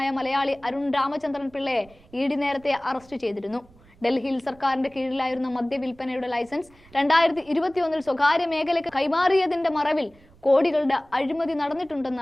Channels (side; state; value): right; noise; rumble, 27 dB below the sound